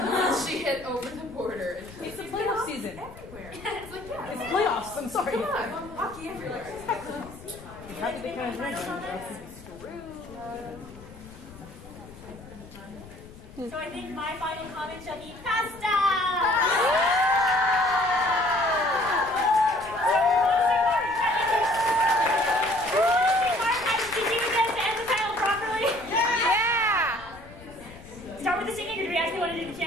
She hit over the border. And It's the playoff season. everywhere. It's like, yeah, It's playoffs. I'm sorry. come on, hockey everywhere. How did they kind of So, I think my final comment shall be pasta! Start with the singing, or do we actually want to do the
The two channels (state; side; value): noise; left; rumble, 18 dB below the sound